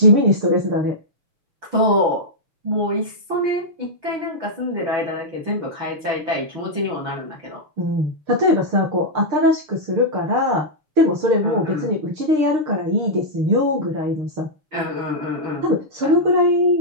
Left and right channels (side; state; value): left; late; 6.6 ms